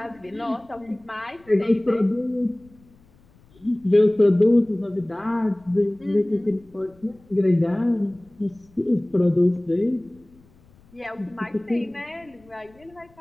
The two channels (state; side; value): noise; left; rumble, 29 dB below the sound